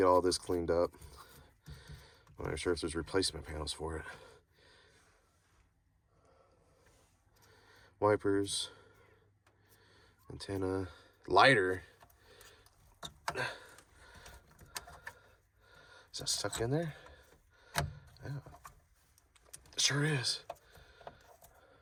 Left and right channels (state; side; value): identical; both; correlation 1.00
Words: all this cleaned up. I'm not sure if there's replacement panels for it. Wipers. Antenna. Lighter. Is that stuck in there? Yeah. It sure is.